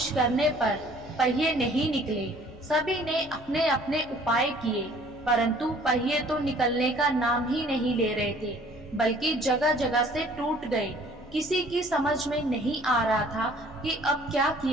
करने पर पहिए नहीं निकले। सभी ने अपने अपने उपाय किए, परंतु पहिए तो निकलने का नाम ही नहीं ले रहे थे, बल्कि जगह जगह से टूट गए। किसी की समझ में नहीं आ रहा था कि अब क्या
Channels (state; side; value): normal; both; correlation 0.55